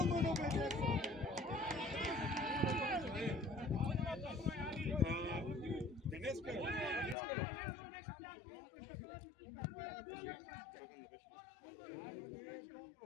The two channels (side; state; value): right; drops out; at 7.2 s